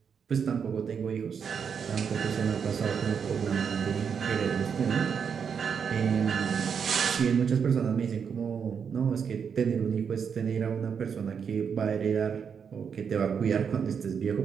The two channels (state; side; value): quieter; left; 6.8 dB